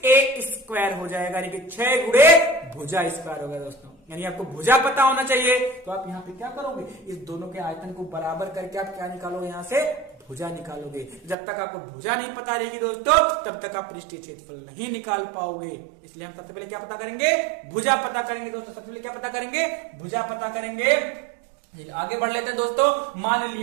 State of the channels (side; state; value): left; drops out; at 11.4 s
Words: स्क्वायर हो जाएगा, यानी कि 6 गुणे भुजा स्क्वायर होगा दोस्तों। यानी आपको भुजा पता होना चाहिए। तो आप यहाँ पे क्या करोगे? इस दोनों के आयतन को बराबर करके आप क्या निकालोगे? यहाँ से भुजा निकालोगे। जब तक आपको भुजा नहीं पता रहेगी दोस्तों, तब तक आप पृष्ठीय क्षेत्रफल नहीं निकाल पाओगे। इसलिए हम सबसे पहले क्या पता करेंगे? भुजा पता करेंगे दोस्तों। सबसे पहले क्या पता करेंगे? भुजा पता करेंगे। आगे बढ़ लेते हैं दोस्तों। मान